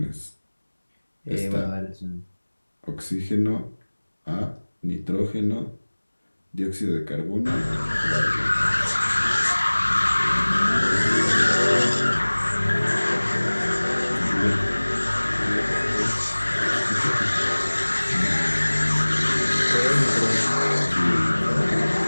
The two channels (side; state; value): both; inverted; correlation -1.00